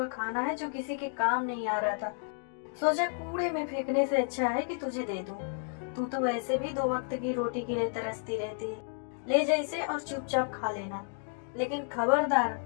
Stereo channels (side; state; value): right; silent; 57 dB below the other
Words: खाना है जो किसी के काम नहीं आ रहा था। सोचा कूड़े में फेंकने से अच्छा है कि तुझे दे दूं। तू तो वैसे भी 2 वक्त की रोटी के लिए तरसती रहती है। ले जा इसे और चुपचाप खा लेना, लेकिन खबरदार